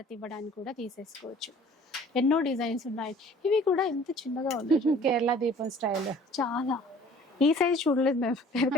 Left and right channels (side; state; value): both; normal; correlation 0.51